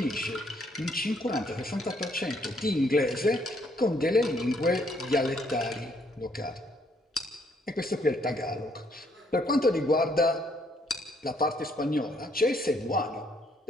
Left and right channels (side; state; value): both; normal; correlation 0.69